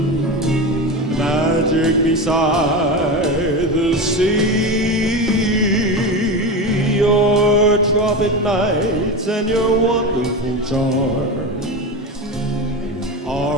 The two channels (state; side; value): normal; both; correlation 0.22